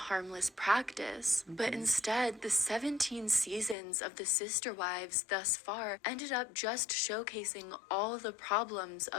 practice. But instead, the 17 seasons of The Sister Wives thus far ended up just showcasing all the problems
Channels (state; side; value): drops out; right; at 3.8 s